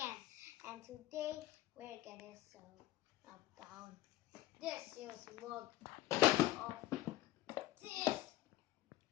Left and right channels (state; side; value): quieter; right; 15.4 dB